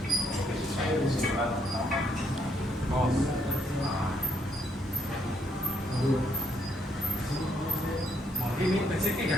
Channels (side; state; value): both; normal; correlation 0.72